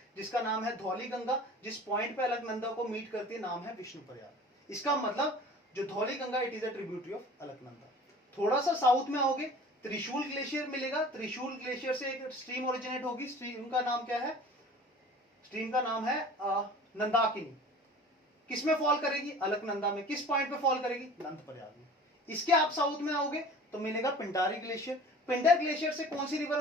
जिसका नाम है धौली गंगा, जिस पॉइंट पे अलकनंदा को मीट करती है, नाम है विष्णु प्रयाग। इसका मतलब जो Dhauli Ganga, it is a tributary of Alaknanda. थोड़ा सा साउथ में आओगे, त्रिशूल ग्लेशियर मिलेगा, त्रिशूल ग्लेशियर से एक स्ट्रीम ओरिजिनेट होगी, स्ट्रीम का नाम क्या है, स्ट्रीम का नाम है नंदाकिनी। किसमें फॉल करेगी, अलकनंदा में। किस पॉइंट पे फॉल करेगी, नंद प्रयाग में। इसके आप साउथ में आओगे तो मिलेगा पिंडारी ग्लेशियर। पिंडर ग्लेशियर से कौन सी रिवर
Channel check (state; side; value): normal; both; correlation 0.43